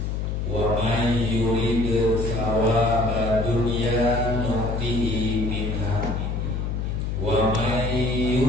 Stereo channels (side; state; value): left; noise; hum, 2 dB below the sound